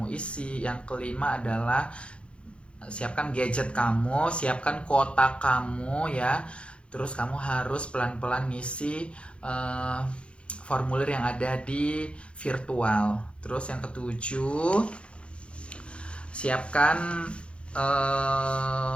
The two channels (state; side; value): late; right; 0.059 ms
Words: isi. Yang kelima adalah siapkan gadget kamu, siapkan kuota kamu ya. Terus kamu harus pelan-pelan ngisi formulir yang ada di virtual. Terus yang ketujuh, siapkan